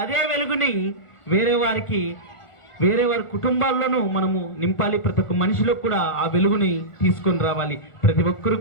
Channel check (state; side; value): late; right; 1.4 ms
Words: అదే వెలుగుని వేరే వారి కుటుంబాల్లోనూ మనము నింపాలి. ప్రతి ఒక్క మనిషిలో కూడా ఆ వెలుగుని తీసుకొని రావాలి. ప్రతి